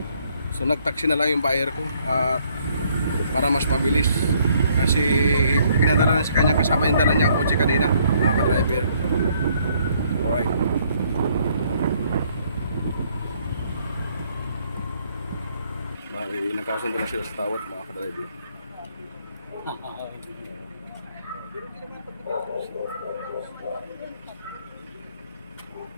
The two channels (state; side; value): inverted; both; correlation -0.67